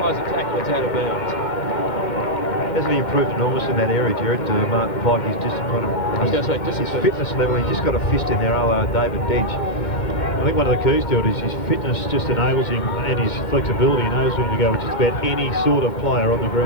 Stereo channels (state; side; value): late; right; 2.1 ms